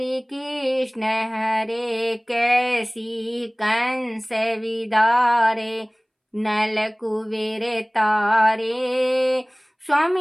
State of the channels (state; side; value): identical; both; correlation 1.00